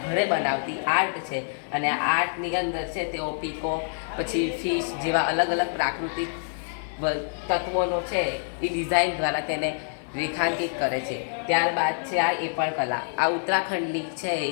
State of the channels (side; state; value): right; silent; 61 dB below the other